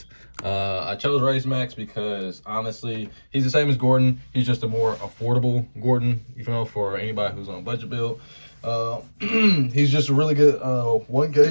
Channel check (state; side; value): inverted; both; correlation -1.00